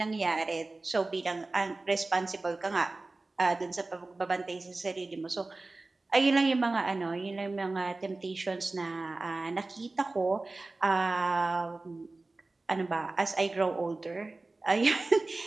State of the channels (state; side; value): quieter; left; 3.2 dB